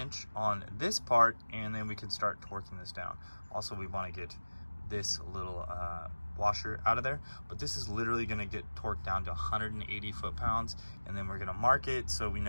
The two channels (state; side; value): inverted; both; correlation -1.00